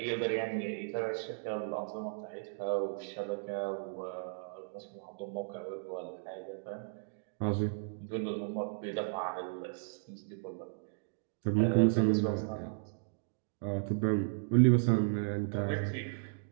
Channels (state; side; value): silent; left; digital silence